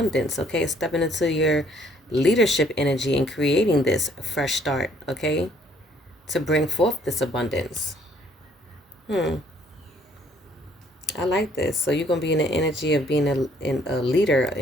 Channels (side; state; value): both; normal; correlation 0.63